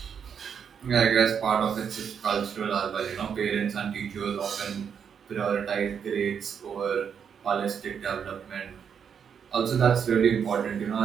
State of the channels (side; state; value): left; quieter; 7.4 dB